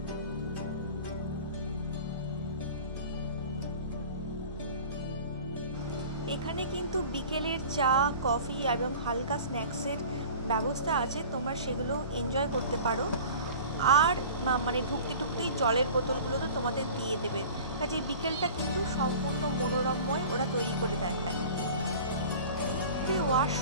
এখানে কিন্তু বিকেলের চা, কফি এবং হালকা স্ন্যাক্সের ব্যবস্থা আছে, তোমরা সেগুলো এনজয় করতে পারো। আর মানে ঢুকতেই জলের বোতলগুলো তো তোমাদের দিয়ে দেবে, কাজে বিকেলটা কিন্তু সম্পূর্ণ মনোরমময় ওরা তৈরি করে দেয়। যে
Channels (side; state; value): both; inverted; correlation -0.41